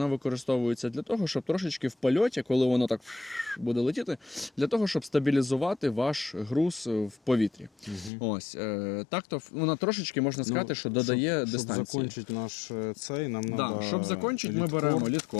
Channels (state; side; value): drops out; right; at 8.1 s